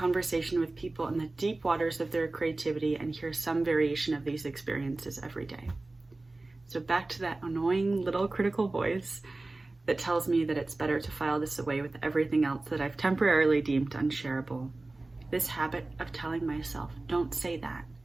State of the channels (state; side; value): quieter; left; 3.1 dB